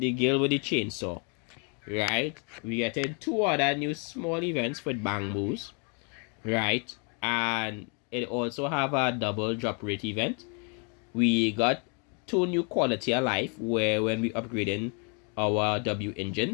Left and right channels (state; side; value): quieter; right; 36.9 dB